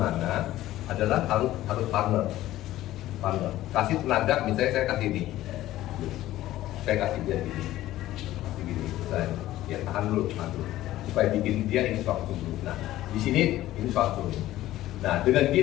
adalah harus partner. Kasih tenaga, misalnya saya kasih ini, saya kasih dia gini, saya ya tahan dulu, supaya bikin dia ini suatu dulu. Nah, di sini ini suatu. Nah, dengan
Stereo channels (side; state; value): right; quieter; 14.9 dB